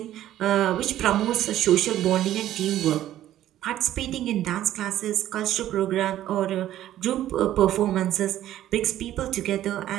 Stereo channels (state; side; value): quieter; left; 12.8 dB